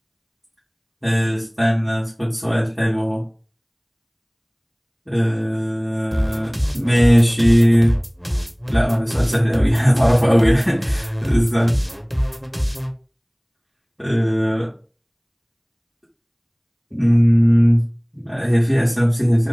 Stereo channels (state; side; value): identical; both; correlation 1.00